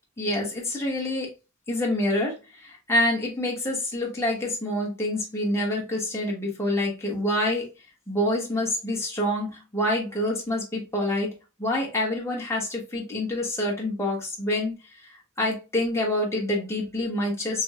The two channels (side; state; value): both; normal; correlation 0.32